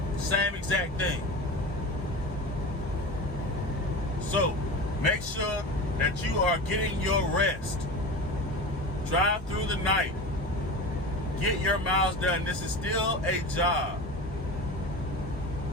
Same exact thing. So, make sure that you are getting your rest. Drive through the night. Get your miles done. This is still a job.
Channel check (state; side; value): normal; both; correlation 0.29